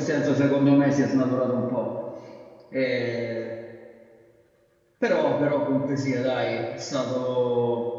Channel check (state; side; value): identical; both; correlation 1.00